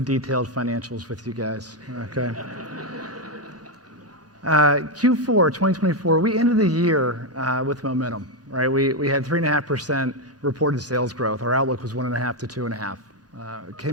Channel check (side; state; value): left; late; 1.1 ms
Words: detailed financials with you guys. Okay. Q4 2024, we ended the year with momentum, right? We had 3.5% reported sales growth. Our outlook was 1.5 to 2.5. It